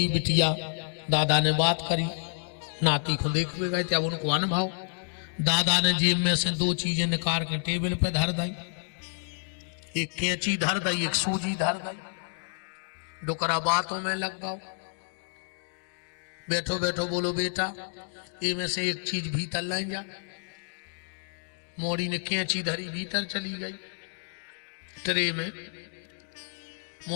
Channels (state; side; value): silent; right; digital silence